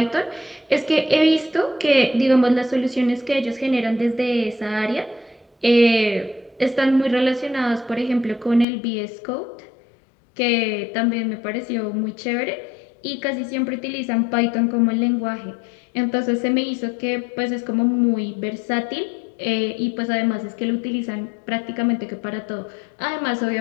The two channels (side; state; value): right; drops out; at 8.7 s